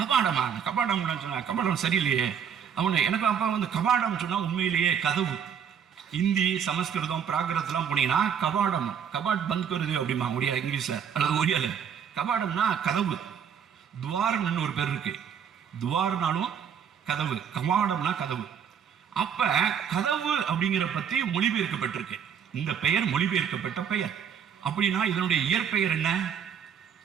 சொன்னா கபாடம் சரியில்லையே. அவனை எனக்கு அப்பா கபாடம் சொன்னா உண்மையிலேயே கதவு. இந்தி, சமஸ்கிருதம், பிராகிருதம்லாம் போனீங்கன்னா கபாடம், கபாட் பந்த் வருது அப்படிமா முடியாது இங்கிலீஷ்ல அல்லது ஒரியால. கபாடம்னா கதவு. துவாரம்னு ஒரு பேர் இருக்கு. துவார்னாலும் கதவு, கபாடம்னா கதவு. அப்ப கதவு அப்படிங்கிற பத்தி மொழிபெயர்க்கப்பட்டிருக்கு. இந்த பெயர் மொழிபெயர்க்கப்பட்ட பெயர். அப்படின்னா இதனுடைய இயற்பெயர் என்ன?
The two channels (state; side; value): quieter; left; 7.8 dB